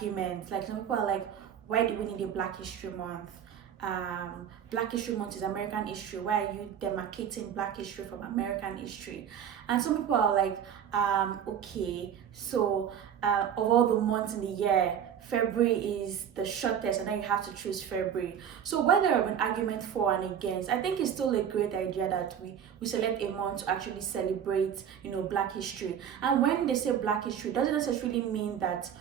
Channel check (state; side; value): quieter; left; 8.8 dB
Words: Like some people are like, why do we need a Black History Month? Black History Month is American history. Why are you demarcating Black history from American history? And some people are like, okay, so of all the months in the year, February is the shortest, and then you have to choose February. So whether there have been arguments for and against, I think it's still a great idea that we select a month to actually celebrate, Black history. And when they say Black history, it doesn't necessarily mean that